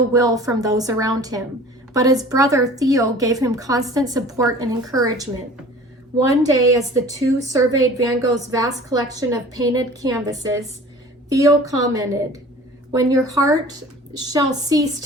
will from those around him. But his brother Theo gave him constant support and encouragement. One day, as the two surveyed Van Gogh's vast collection of painted canvases, Theo commented, "When your heart shall cease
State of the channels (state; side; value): normal; both; correlation 0.45